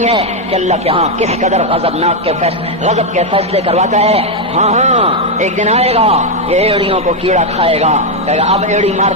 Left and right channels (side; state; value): both; normal; correlation 0.03